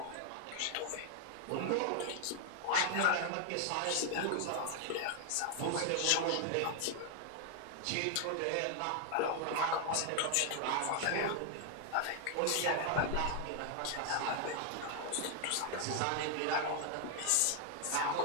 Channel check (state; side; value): different; both; correlation 0.00